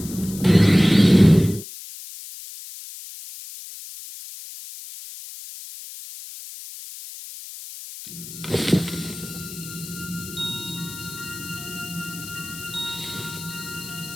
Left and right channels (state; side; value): noise; left; hiss, 13 dB below the sound